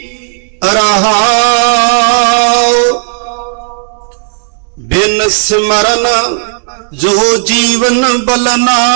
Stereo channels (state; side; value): silent; left; digital silence